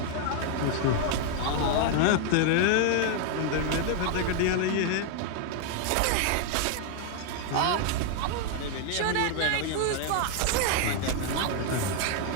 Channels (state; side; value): different; both; correlation 0.00